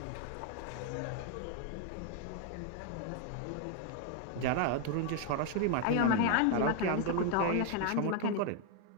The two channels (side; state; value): both; different; correlation 0.01